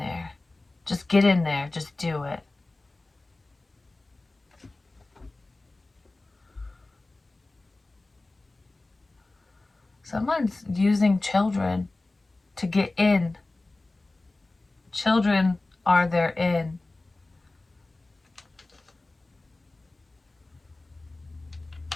Just get in there. Just do it. Someone's using children to get in. Children are their in.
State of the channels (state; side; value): quieter; right; 3.0 dB